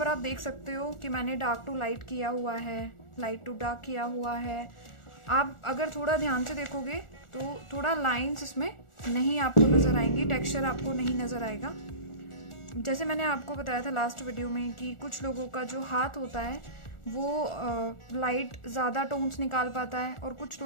आप देख सकते हो कि मैंने डार्क टू लाइट किया हुआ है, लाइट टू डार्क किया हुआ है। आप अगर थोड़ा ध्यान से देखोगे तो थोड़ा लाइंस इसमें नहीं आपको नज़र आएंगी, टेक्सचर आपको नहीं नज़र आएगा। जैसे मैंने आपको बताया था लास्ट वीडियो में कि कुछ लोगों का जो हाथ होता है वो लाइट ज़्यादा टोन्स निकाल पाता है और कुछ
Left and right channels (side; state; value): right; late; 1.4 ms